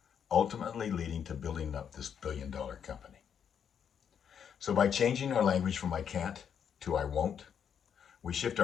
ultimately leading to building up this billion-dollar company. So by changing our language from I can't to I won't, we shift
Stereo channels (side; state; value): right; quieter; 7.9 dB